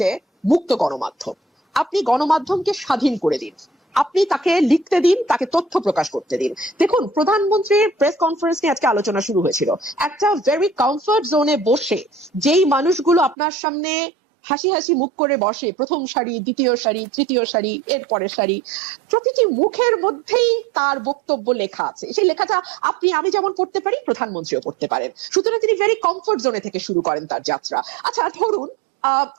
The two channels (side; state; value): left; drops out; at 13.4 s